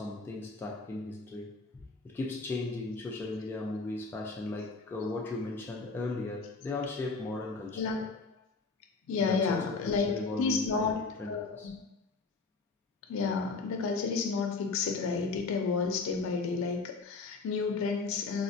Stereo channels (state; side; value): quieter; right; 4.1 dB